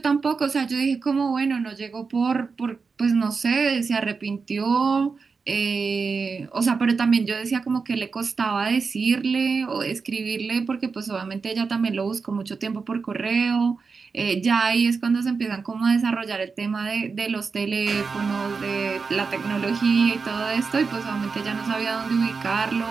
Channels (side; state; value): left; quieter; 4.9 dB